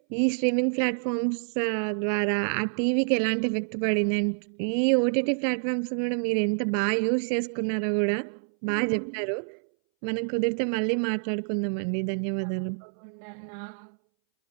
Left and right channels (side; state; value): left; silent; 60 dB below the other